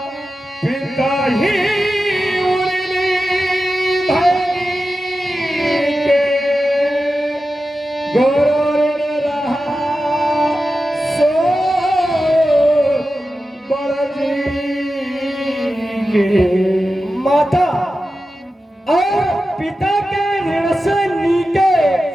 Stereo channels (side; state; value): both; normal; correlation 0.92